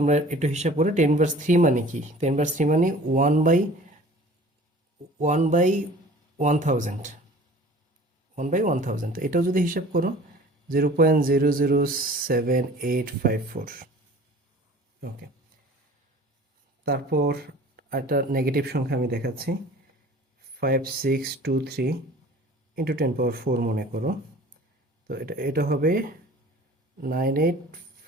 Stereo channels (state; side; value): normal; both; correlation 0.46